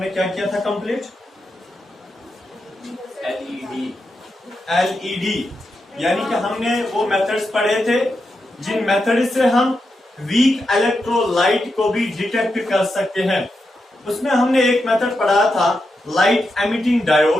क्या किया था कंप्लीट? एलईडी यानी कि हमने वो मेथड्स पढ़े थे जिन मेथड से हम वीक इलेक्ट्रोलाइट को भी डिटेक्ट कर सकते हैं। उसमें हमने एक मेथड पढ़ा था लाइट एमिटिंग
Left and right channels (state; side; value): normal; both; correlation 0.86